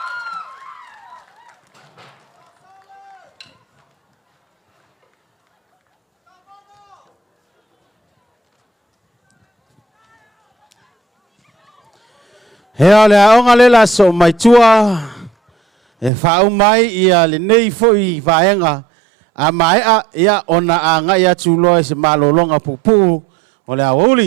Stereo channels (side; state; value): left; drops out; at 16.1 s